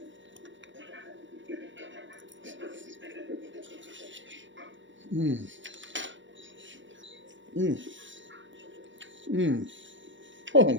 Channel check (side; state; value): left; late; 0.55 ms